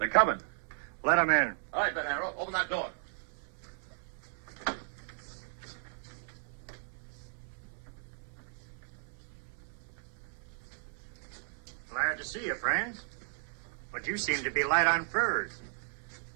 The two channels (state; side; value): silent; left; 54 dB below the other